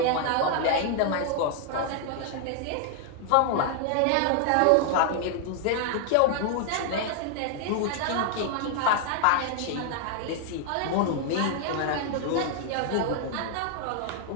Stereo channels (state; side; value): different; both; correlation 0.00